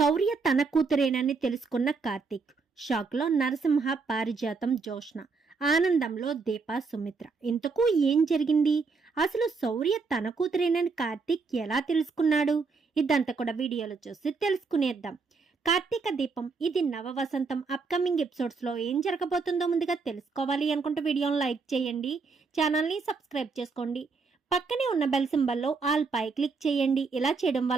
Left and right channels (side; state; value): left; quieter; 4.6 dB